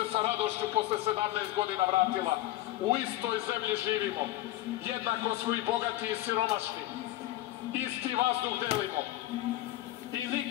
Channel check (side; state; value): right; quieter; 15.7 dB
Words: sa radošću posle 17 godina vratila. U istoj zemlji živimo. Jednako smo i bogati i siromašni. Isti vazduh delimo. I